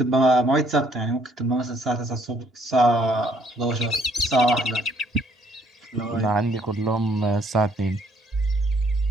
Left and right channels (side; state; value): both; normal; correlation 0.65